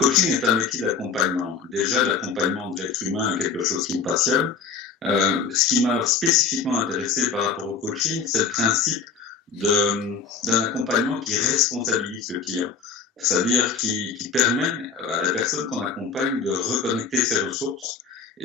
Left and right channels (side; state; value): right; quieter; 5.6 dB